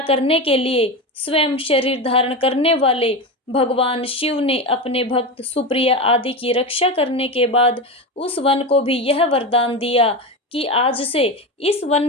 करने के लिए स्वयं शरीर धारण करने वाले भगवान शिव ने अपने भक्त सुप्रिय आदि की रक्षा करने के बाद उस वन को भी यह वरदान दिया कि आज से इस वन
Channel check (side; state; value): both; normal; correlation 0.20